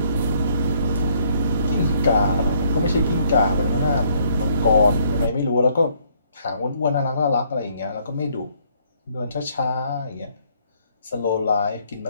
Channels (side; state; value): both; inverted; correlation -0.66